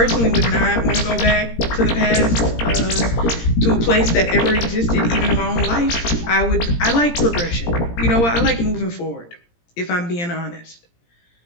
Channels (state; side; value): late; right; 17 ms